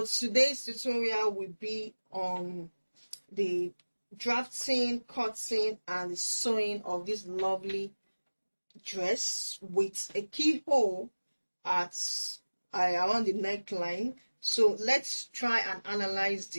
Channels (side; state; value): both; inverted; correlation -1.00